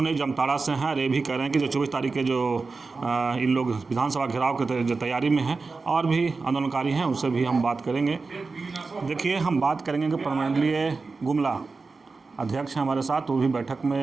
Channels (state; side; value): quieter; left; 4.1 dB